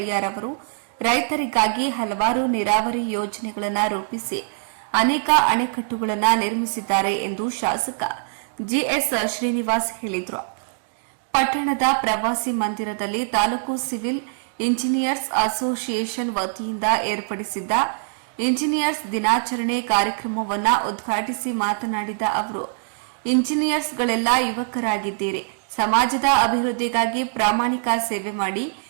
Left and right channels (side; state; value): left; silent; digital silence